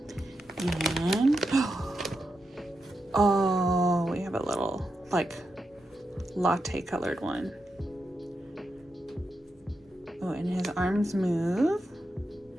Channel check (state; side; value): normal; both; correlation 0.86